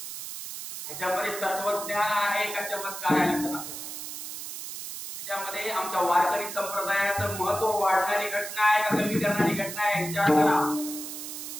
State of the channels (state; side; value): noise; right; hiss, 8 dB below the sound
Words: ह्याच्यामध्ये तत्वज्ञान आहे का चमत्कार आहे लक्षात असं. त्याच्यामध्ये आमच्या वारकरी संप्रदायाचं महत्व वाढणारी घटना आहे का कमी करणारी घटना आहे विचार करा.